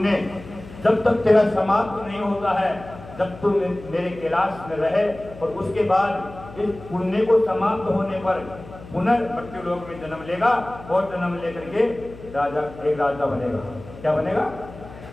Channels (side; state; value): left; noise; hum, 17 dB below the sound